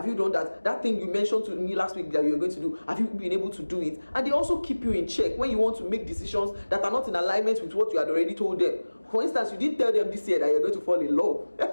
you done that? That thing you mentioned to me last week that you were going to do, have you been able to do it? And they also keep you in check when you want to make decisions that are not in alignment with what you had already told them. For instance, you didn't tell them this year that you're going to fall in love.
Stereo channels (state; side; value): inverted; both; correlation -1.00